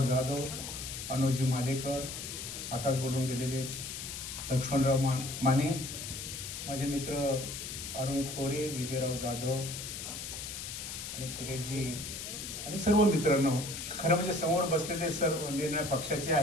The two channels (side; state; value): left; noise; hiss, 7 dB below the sound